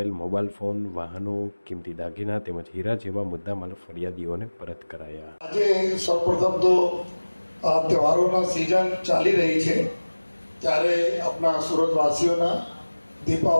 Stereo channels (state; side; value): inverted; both; correlation -1.00